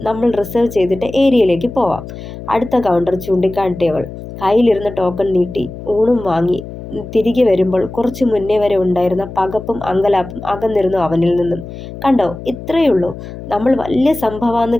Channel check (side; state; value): left; noise; hum, 12 dB below the sound